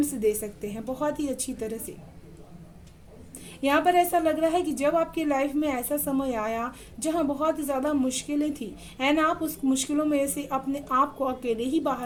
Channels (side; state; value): both; identical; correlation 1.00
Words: दे सकते हैं बहुत ही अच्छी तरह से। यहाँ पर ऐसा लग रहा है कि जब आपकी लाइफ में ऐसा समय आया जहाँ बहुत ज़्यादा मुश्किलें थी एंड आप उस मुश्किलों में से अपने आप को अकेले ही